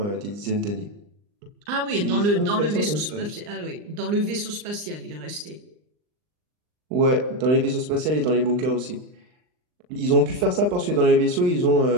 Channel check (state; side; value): late; left; 39 ms